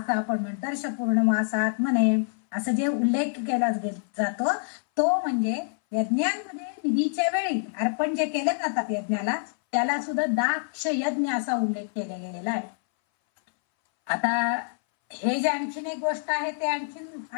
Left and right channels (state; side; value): silent; right; 61 dB below the other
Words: आपण म्हणतो, दर्श पूर्णमासात म्हणे असं जे उल्लेख केला जातो तो म्हणजे यज्ञांमध्ये विधीच्या वेळी अर्पण जे केले जातात यज्ञाला त्याला सुद्धा दाक्ष यज्ञ असा उल्लेख केला गेलेला आहे. आता हे जे आणखीन एक गोष्ट आहे ते